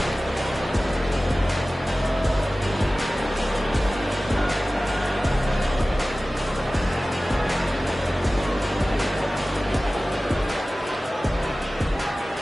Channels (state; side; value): normal; both; correlation 0.97